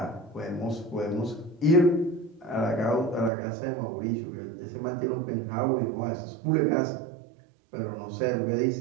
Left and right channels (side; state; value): left; drops out; at 3.3 s